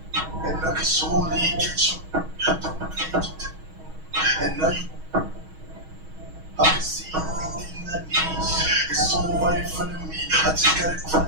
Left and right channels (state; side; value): late; left; 6.3 ms